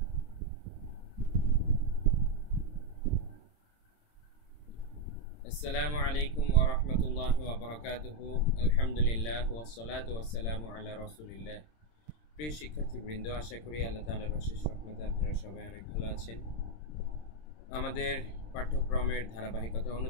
আসসালামু আলাইকুম ওয়া রাহমাতুল্লাহি ওয়া বারাকাতুহু। আলহামদুলিল্লাহ ওয়াসসালাতু ওয়াসসালামু আলা রাসূলিল্লাহ। প্রিয় শিক্ষার্থীবৃন্দ, আশা করি আল্লাহ তাআলার অশেষ রহমতে আপনারা সবাই অনেক ভালো আছেন। আমাদের পাঠ্যক্রমের ধারাবাহিকতা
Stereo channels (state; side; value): late; right; 26 ms